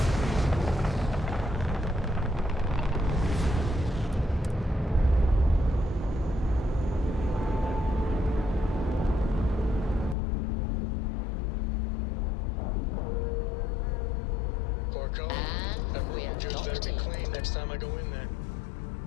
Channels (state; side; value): drops out; right; at 10.2 s